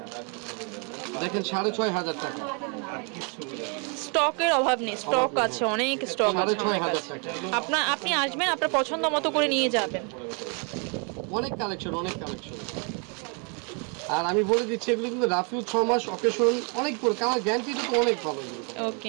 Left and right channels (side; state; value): left; quieter; 36.8 dB